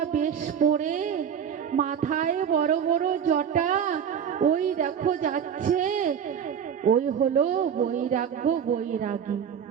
বেশ পরে, মাথায় বড় বড় জটা, ওই দেখো যাচ্ছে, ওই হলো বৈরাগ্য, বৈরাগী,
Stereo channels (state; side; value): quieter; left; 8.1 dB